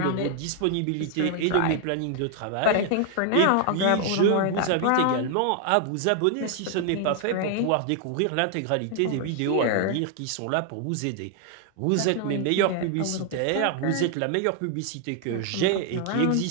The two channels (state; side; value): different; both; correlation 0.00